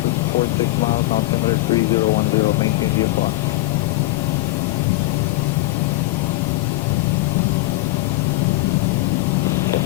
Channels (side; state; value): right; quieter; 19.2 dB